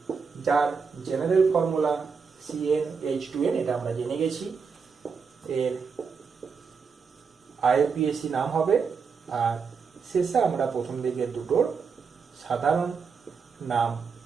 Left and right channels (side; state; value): left; quieter; 5.6 dB